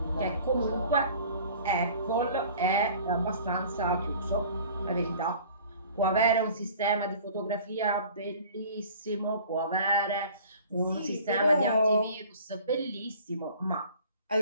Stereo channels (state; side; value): inverted; both; correlation -0.47